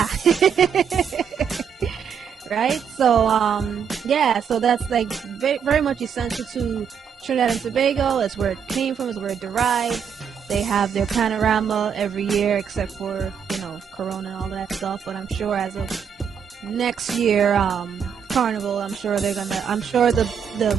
Right? So so that's like very much essential to Trinidad and Tobago. That's where it came from, is where it derived. They have their panorama every year, except for Corona and all that stuff. But I'm sure as of next year, Carnival, I'm sure the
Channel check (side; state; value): left; quieter; 7.3 dB